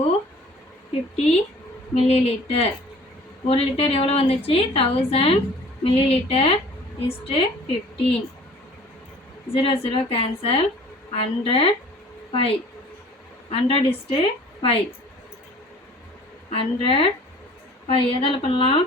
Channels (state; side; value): normal; both; correlation 0.49